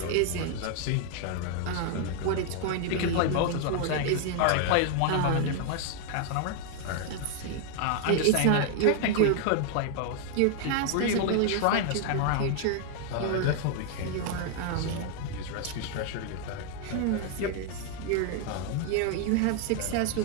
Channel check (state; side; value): different; both; correlation 0.00